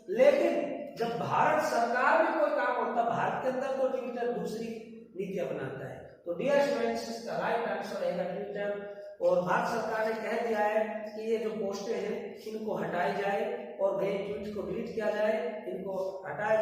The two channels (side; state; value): both; identical; correlation 1.00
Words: लेकिन जब भारत सरकार में कोई काम होता है, भारत के अंदर तो ट्विटर दूसरी नीति अपनाता है। तो डियर स्टूडेंट्स, इसका राइट आंसर रहेगा ट्विटर। और भारत सरकार ने कह दिया है कि ये जो पोस्टें हैं इनको हटाई जाए और गए ट्वीट को डिलीट किया जाए, इनको